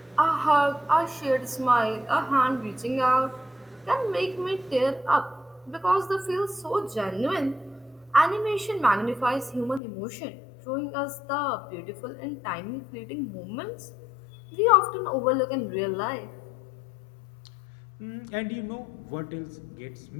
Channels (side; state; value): right; drops out; at 9.8 s